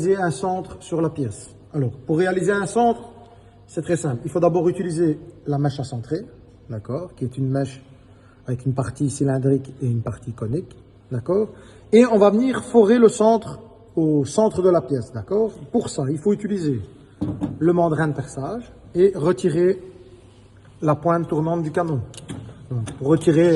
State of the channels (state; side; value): identical; both; correlation 1.00